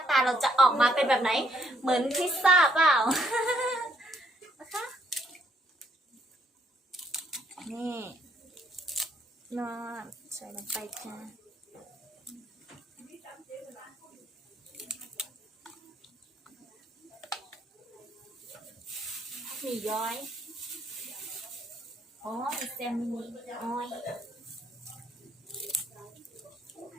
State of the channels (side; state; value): both; normal; correlation 0.69